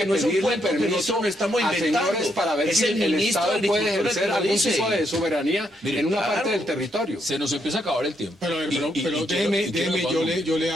no es un pedirle cuento que permiso nosotros no estamos a inventando. señores para ver Es si el el ministro de Estado puede Agricultura ejercer que lo algún dice. tipo de soberanía Mire, en una claro. parte del territorio. se nos empieza a acabar el tiempo. Pero Y déjeme, quiero- yo le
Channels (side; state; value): both; normal; correlation 0.77